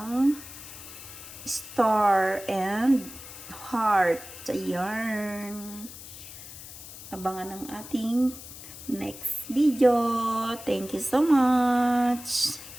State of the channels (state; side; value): noise; left; hiss, 14 dB below the sound